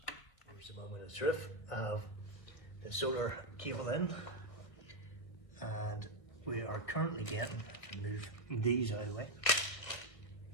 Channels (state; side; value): late; right; 1.6 ms